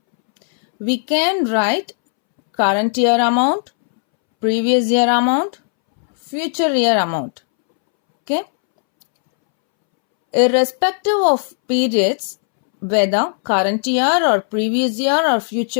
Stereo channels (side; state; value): right; silent; 67 dB below the other